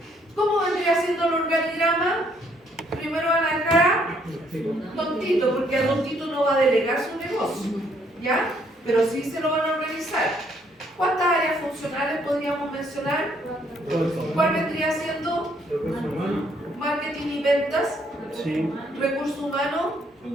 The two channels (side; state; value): both; normal; correlation 0.68